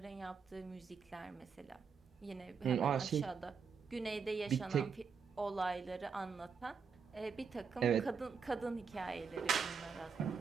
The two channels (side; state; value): left; quieter; 5.9 dB